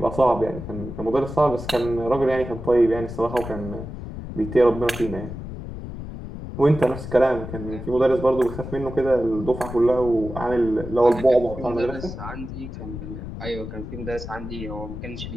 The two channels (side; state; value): left; noise; rumble, 9 dB below the sound